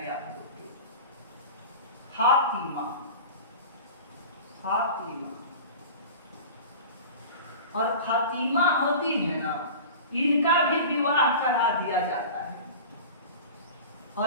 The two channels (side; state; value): both; inverted; correlation -0.36